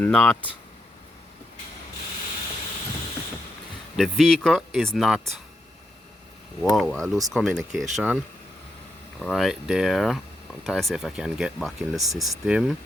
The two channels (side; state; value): both; normal; correlation 0.83